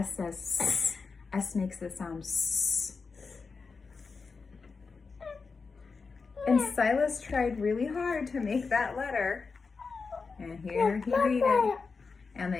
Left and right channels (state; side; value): quieter; right; 4.7 dB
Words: says S. S makes the sound S. And Silas tried really hard to make that letter. And here he made it. And